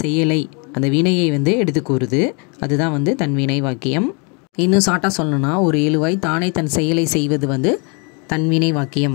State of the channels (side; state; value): right; quieter; 33.9 dB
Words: அந்த வினையை வந்து எடுத்து கூறுது. அதுதான் வந்து தன்வினை வாக்கியம். இன்னும் ஷார்ட்டாக சொல்லணும்னா, ஒரு எழுவாய் தானே தன் செயலை செய்வது வந்து தன்வினை